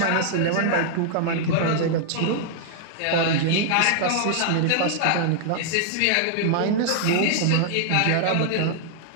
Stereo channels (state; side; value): different; both; correlation -0.01